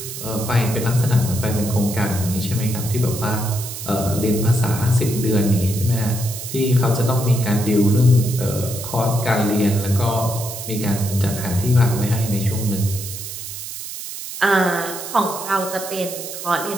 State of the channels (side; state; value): right; noise; hiss, 9 dB below the sound